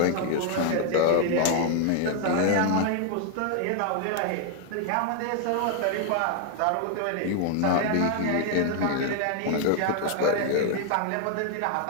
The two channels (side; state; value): both; different; correlation 0.00